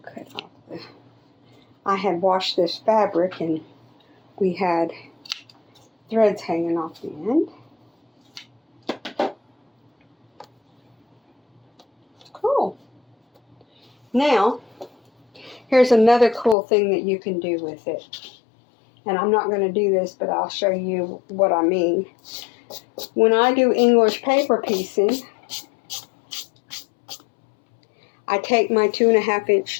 off the. I had washed this fabric and we had threads hanging off the end. Cool. Now, here's another cool thing that you can do with it. And I'm not going to do this, but I'll show you what I mean. When I do English paper piecing, I take my 2.5 inch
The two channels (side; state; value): right; drops out; at 16.6 s